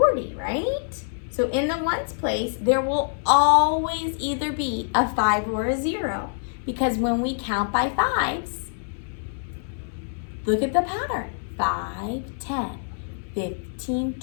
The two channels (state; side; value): silent; right; 62 dB below the other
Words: right? So in the ones place, there will always either be a 5 or a 0. Because when we count by 5s, look at the pattern. 5, 10, 15,